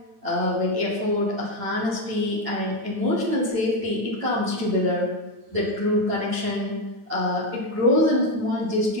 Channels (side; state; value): left; late; 9.2 ms